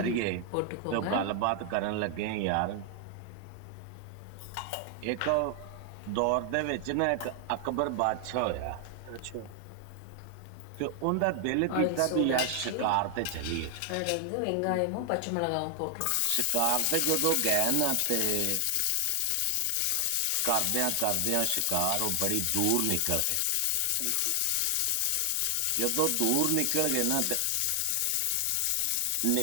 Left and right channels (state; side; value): different; both; correlation 0.00